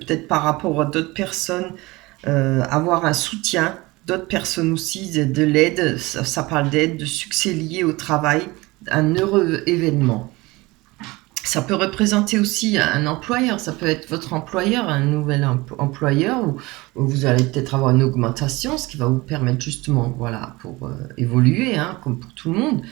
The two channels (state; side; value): quieter; left; 22.1 dB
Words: par rapport à d'autres personnes, avoir un soutien d'autres personnes aussi, de l'aide, ça parle d'aide, de succès lié au travail, un heureux événement. Ça peut représenter aussi un employeur, ça peut être votre employeur, un nouvel employeur, où vous allez peut-être avoir une augmentation, ce qui va vous permettre justement, voilà, pour évoluer, hein, comme pour tout le monde.